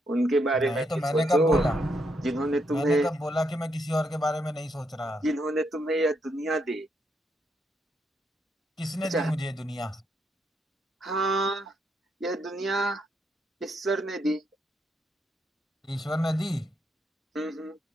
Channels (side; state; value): both; normal; correlation 0.78